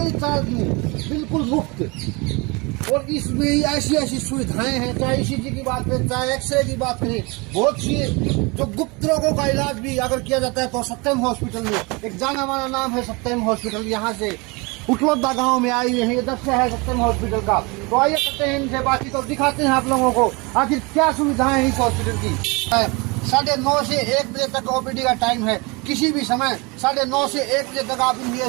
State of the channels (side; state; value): left; quieter; 27.4 dB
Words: चार्ज नहीं, बिल्कुल मुफ्त। और इसमें ऐसी ऐसी सुविधाएं हैं, चाहे ईसीजी की बात करें, चाहे एक्सरे की बात करें, बहुत सी जो गुप्त रोगों का इलाज भी अगर किया जाता है तो सत्यम हॉस्पिटल में एक जाना माना नाम है सत्यम हॉस्पिटल। यहाँ से उठलोदा गांव में आई है, इधर से है सत्यम हॉस्पिटल का। तो आइए करते हैं इनसे बातचीत और दिखाते हैं आप लोगों को आखिर क्या सुविधाएं हैं इस हॉस्पिटल की। 9:30 से 1 बजे तक ओपीडी का टाइम है, किसी भी समय 9:30 से 1 बजे तक आप